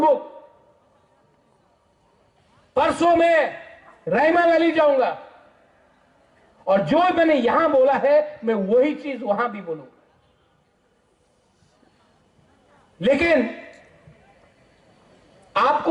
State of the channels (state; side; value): identical; both; correlation 1.00